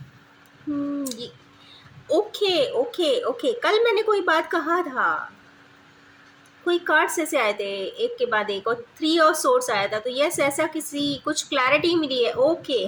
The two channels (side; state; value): both; identical; correlation 1.00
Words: ये ओके ओके ओके, कल मैंने कोई बात कहा था, कोई कार्ड्स ऐसे आए थे एक के बाद एक और 3 ऑफ सोर्स आया था। तो यस, ऐसा किसी कुछ क्लैरिटी मिली है। ओके,